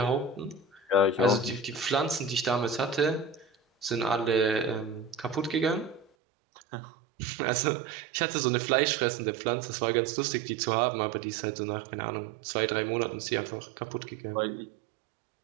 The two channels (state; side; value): drops out; left; at 6.1 s